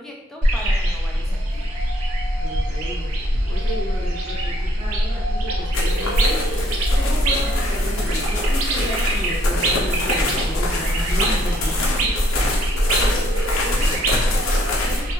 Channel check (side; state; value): both; normal; correlation 0.67